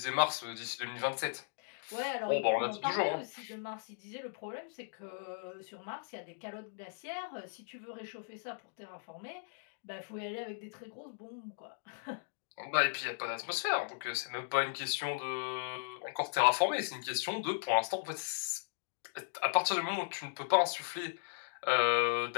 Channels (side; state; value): right; silent; digital silence